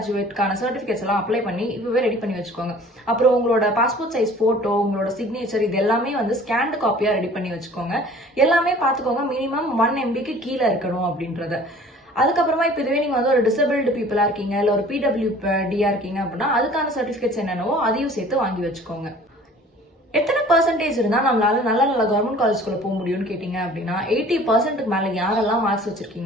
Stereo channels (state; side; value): normal; both; correlation 0.49